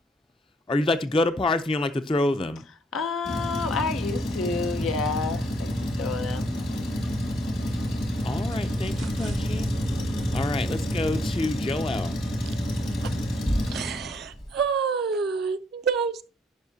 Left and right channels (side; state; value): both; normal; correlation 0.70